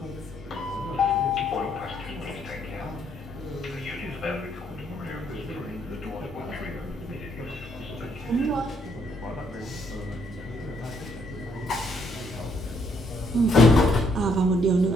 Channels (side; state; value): both; normal; correlation 0.70